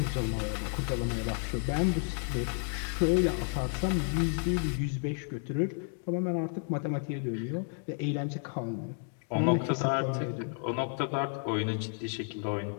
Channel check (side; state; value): right; silent; 57 dB below the other